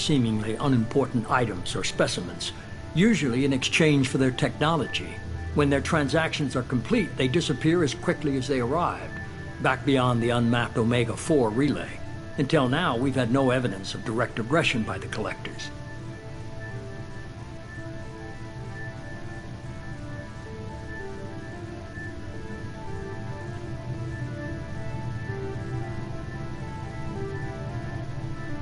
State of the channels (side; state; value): both; identical; correlation 1.00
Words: unimportant items or specimens, usually in exchange for their technology. When their transactions are complete, they disappear as quickly as they arrived, back beyond the unmapped Omega-4 relay. Until now, we've had no evidence of direct aggression by the Collectors.